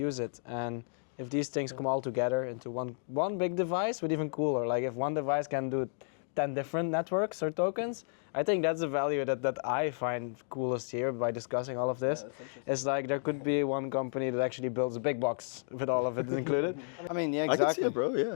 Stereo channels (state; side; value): silent; right; digital silence